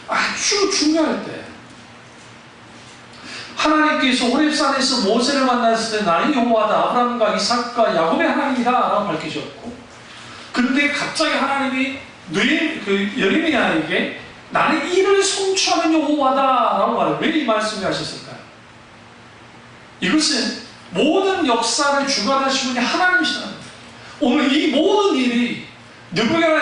아주 중요할 때. 하나님께서 호렙산에서 모세를 만났을 때 나는 여호와다, 아브라함과 이삭과 야곱의 하나님이다 라고 밝히셨고, 그런데 갑자기 하나님이 예레미야에게 나는 이를 성취하는 여호와다 라고 말해요. 왜 이 말씀을 하셨을까요? 이것은 모든 역사를 주관하시는 분이 하나님이시라는 거예요. 오늘 이 모든 일이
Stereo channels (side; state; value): both; identical; correlation 1.00